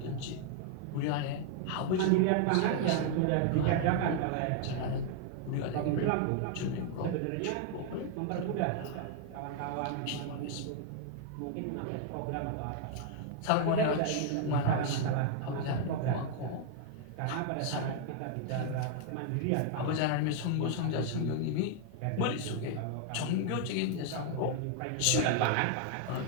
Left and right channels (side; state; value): both; different; correlation 0.00